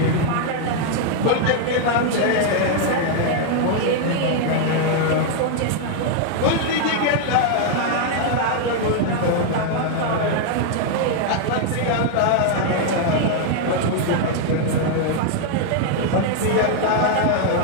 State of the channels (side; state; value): both; different; correlation 0.00